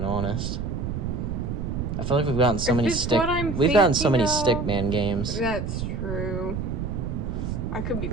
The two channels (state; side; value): noise; right; rumble, 3 dB below the sound